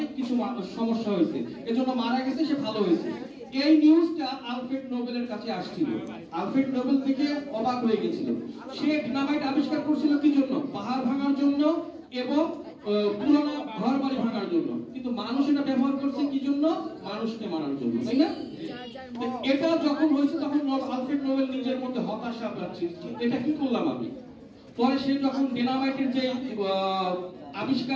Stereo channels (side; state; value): both; identical; correlation 1.00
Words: কিছু সমস্যা হয়েছে, এজন্য মারা গেছে, সে ভালো হয়েছে। এই নিউজটা আলফ্রেড নোবেলের কাছে আসছিল। আলফ্রেড নোবেল থেকে অবাক হয়ে গেছিল। সে ডিনামাইট আবিষ্কার করছিল কি জন্য? পাহাড় ভাঙার জন্য এবং পুরোনো ঘর বাড়ি ভাঙার জন্য, কিন্তু মানুষ এটা ব্যবহার করছে কি জন্য? মানুষকে মারার জন্য, তাই না? এটা যখন হয়েছে তখন আলফ্রেড নোবেল নিজের মধ্যে হতাশা পাচ্ছে, এটা কি করলাম আমি। পরে সে যখন ডিনামাইটের যে